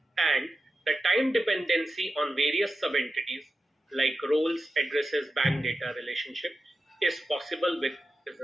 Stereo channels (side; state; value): both; normal; correlation 0.91